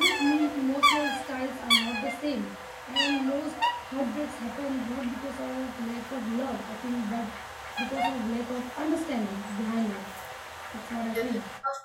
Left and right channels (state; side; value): identical; both; correlation 1.00